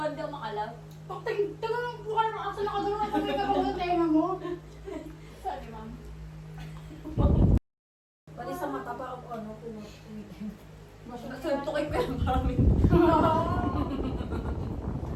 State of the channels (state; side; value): identical; both; correlation 1.00